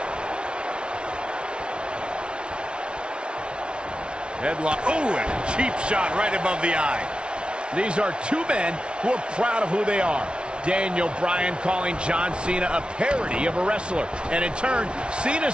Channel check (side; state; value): left; late; 0.057 ms